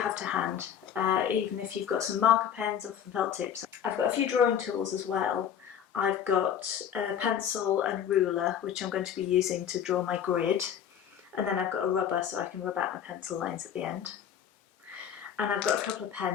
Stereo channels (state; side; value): quieter; right; 8.9 dB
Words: to hand, even if you've got some marker pens or some felt tips. I've got a few drawing tools as well. I've got a pencil and ruler, which I'm going to be using to draw my grid, and then I've got a rubber so I can rub out my pencil lines at the end. And I've got a couple of